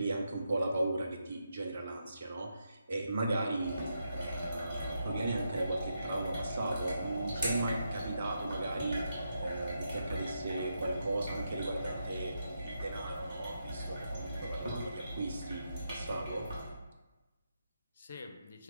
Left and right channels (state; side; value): inverted; both; correlation -0.83